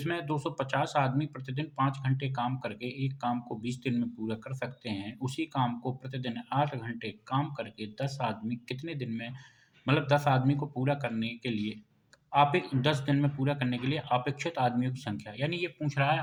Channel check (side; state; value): both; identical; correlation 1.00